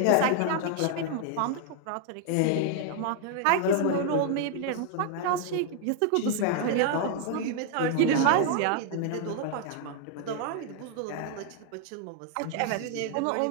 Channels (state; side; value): different; both; correlation 0.00